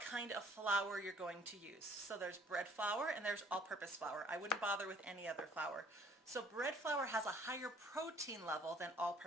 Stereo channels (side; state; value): both; normal; correlation 0.58